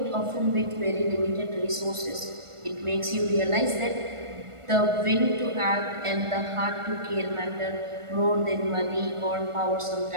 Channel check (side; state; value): left; late; 1.4 ms